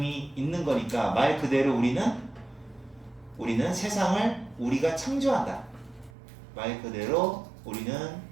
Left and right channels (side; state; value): left; drops out; at 6.1 s